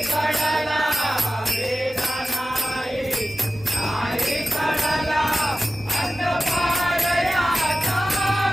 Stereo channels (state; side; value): normal; both; correlation 0.95